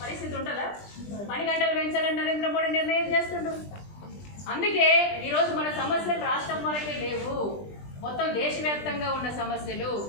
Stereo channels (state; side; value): late; right; 20 ms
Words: పరిస్థితి ఉంటుందా? 10 గంటలు పెంచాలని నరేంద్ర మోడీ నిర్ణయం చేస్తుండ్రు. అందుకే ఈరోజు మన సమస్యలు రాష్ట్రం వరకే లేవు, మొత్తం దేశవ్యాప్తంగా ఉన్న సమస్యలు.